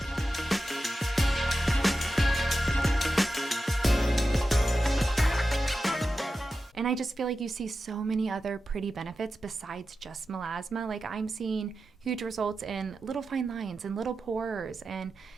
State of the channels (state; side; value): normal; both; correlation 0.92